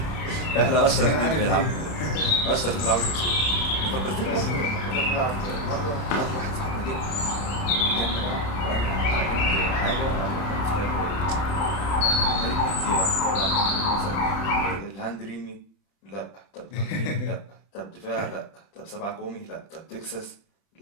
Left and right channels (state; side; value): late; right; 31 ms